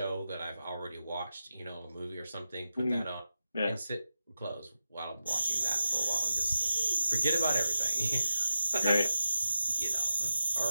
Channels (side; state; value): both; inverted; correlation -0.92